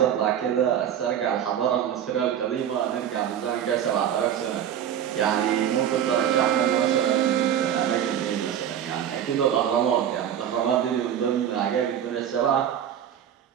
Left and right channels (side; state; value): left; quieter; 9.6 dB